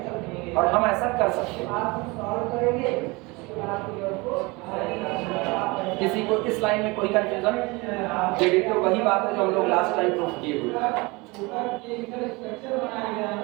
और हम ऐसा कर सकते हैं। किसी को इस लाइन में कोई कंफ्यूजन? तो वही बात है जो हम लोग लास्ट टाइम प्रूफ किए हुए।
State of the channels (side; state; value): left; quieter; 25.1 dB